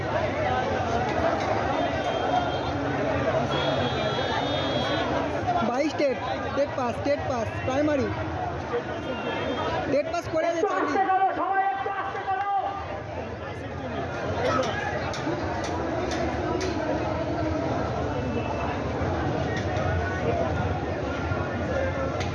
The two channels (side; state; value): both; identical; correlation 1.00